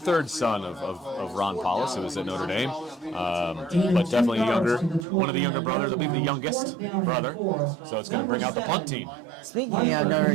son of Ron Paulus, who was at Notre Dame, but definitely one of the younger brothers, I believe the youngest brother. So it's going to bring out the punt team. Speaking of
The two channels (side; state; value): left; drops out; at 5.1 s